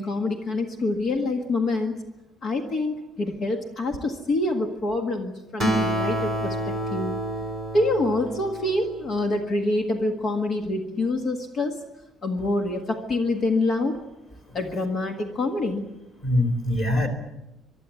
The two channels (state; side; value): normal; both; correlation 0.72